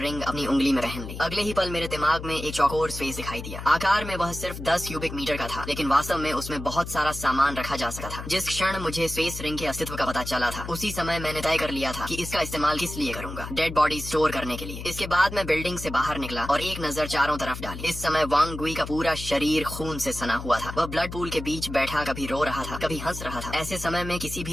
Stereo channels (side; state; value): left; noise; hum, 9 dB below the sound